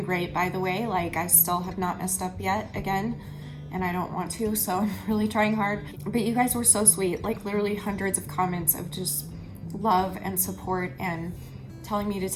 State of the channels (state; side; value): identical; both; correlation 1.00